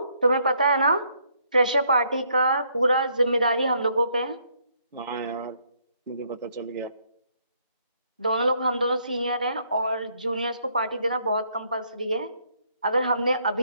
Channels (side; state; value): both; inverted; correlation -0.70